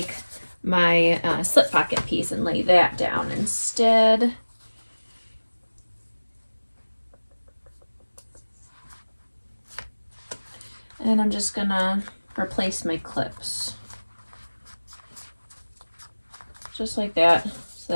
my slip pocket piece and lay that down instead. And I'm just going to replace my clips just like that, so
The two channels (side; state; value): both; inverted; correlation -1.00